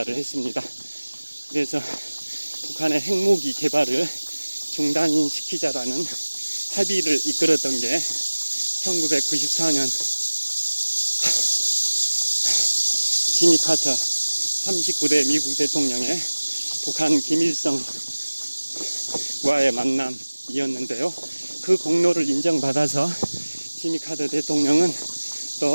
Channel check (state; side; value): inverted; both; correlation -1.00